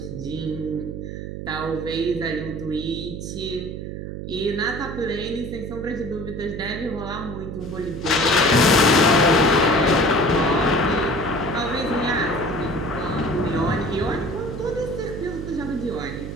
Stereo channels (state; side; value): noise; right; hum, 7 dB below the sound